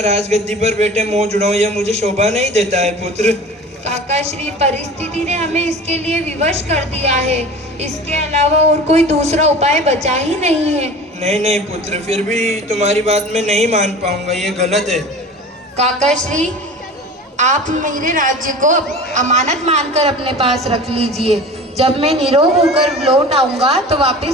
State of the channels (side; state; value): both; normal; correlation 0.38